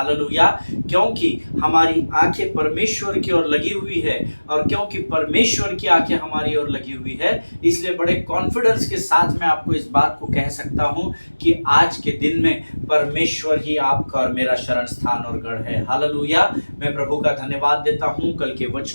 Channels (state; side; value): inverted; both; correlation -1.00